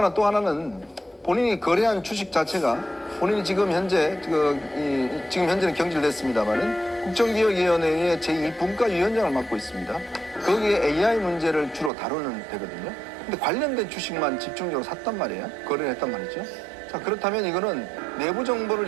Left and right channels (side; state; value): left; drops out; at 11.9 s